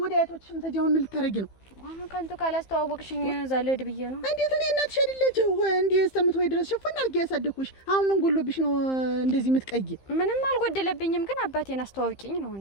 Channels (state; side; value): late; right; 15 ms